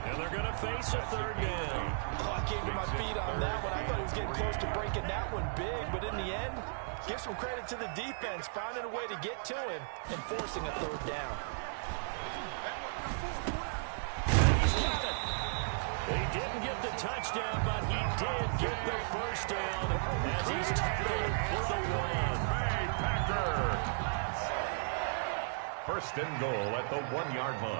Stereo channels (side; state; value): left; silent; digital silence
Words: and they're going to face a 3rd down. Oh, I can't get my feet on that one. I thought he was getting close to breaking that one big, but in the end, Give some credit to the defense, finding a way to get to him and forcing a third down. He's got it. He didn't get the touchdown, but he did get the first down as he's tackled for the win. Packer. First and goal at the 1-yard